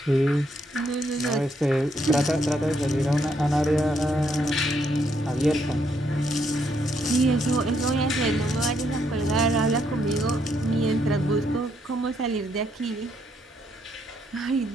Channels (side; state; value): both; normal; correlation 0.74